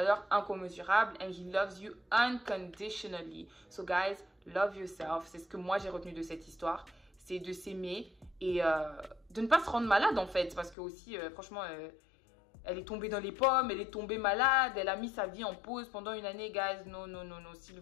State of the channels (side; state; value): right; drops out; at 10.8 s